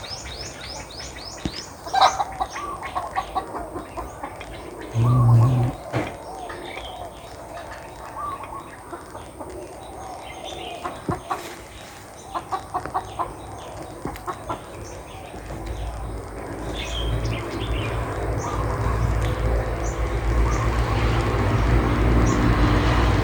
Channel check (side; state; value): both; identical; correlation 1.00